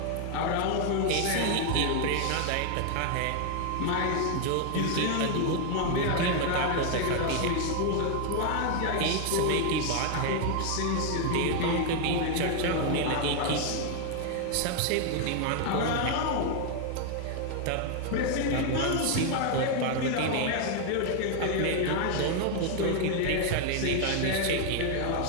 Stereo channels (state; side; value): different; both; correlation 0.00